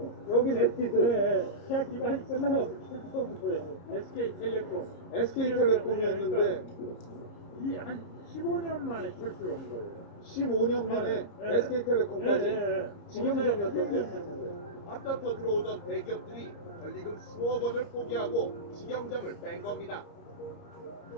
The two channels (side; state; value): right; late; 30 ms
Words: 여긴 에뛰드. 예. 시작 기간이 끝나고 처음부터 SK텔레콤. SK텔레콤이었는데 이 한 15년 만에 철수를 한 거예요. 15년 만에 SK텔레콤까지 직영점이었던데. 앞다퉈 들어오던 대기업들이 권리금 수억 원을 포기하고 직영점을 뺀 겁니다.